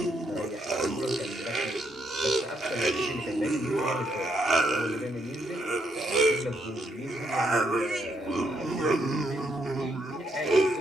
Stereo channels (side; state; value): both; normal; correlation 0.76